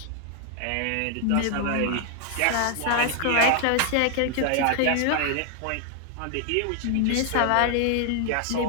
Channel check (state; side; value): different; both; correlation 0.00